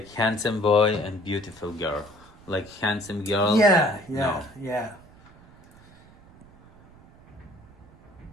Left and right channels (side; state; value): right; noise; rumble, 25 dB below the sound